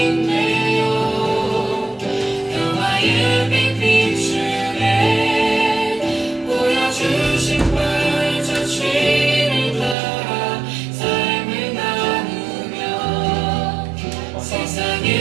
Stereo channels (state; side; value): drops out; left; at 10.0 s